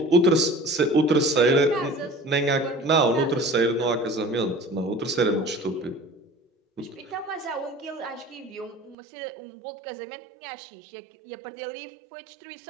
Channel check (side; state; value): left; drops out; at 9.0 s